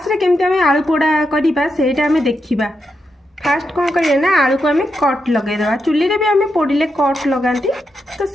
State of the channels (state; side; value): normal; both; correlation 0.84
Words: रे केमते आमे आलू पोड़ा करबा सेटा आमे देखिबा। फास्ट कौन करिए ना, आलू को आमे कट लगे देबा। चुल्ली रे भी आमे पोड़िले कट लगांती, तो